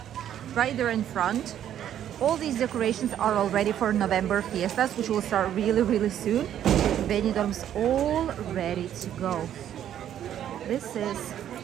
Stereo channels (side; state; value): left; quieter; 10.6 dB